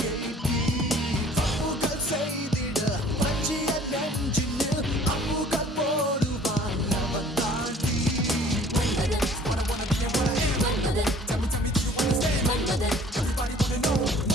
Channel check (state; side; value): normal; both; correlation 0.52